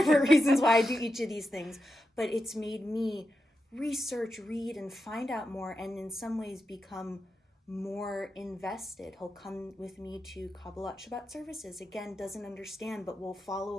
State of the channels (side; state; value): both; normal; correlation 0.88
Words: reasons why I do each of these things. But it's made me research, read, and find out more, and in some ways become more invested. He'll come with me to Kabbalat Shabbat services. Again, doesn't understand, but will follow